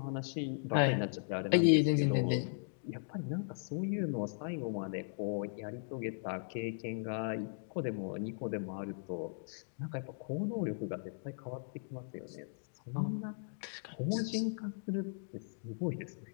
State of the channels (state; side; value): silent; right; digital silence